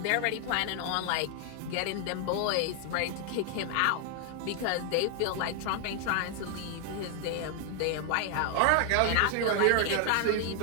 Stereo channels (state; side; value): different; both; correlation 0.00